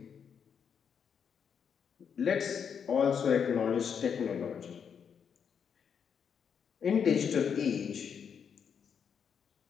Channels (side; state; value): right; quieter; 7.2 dB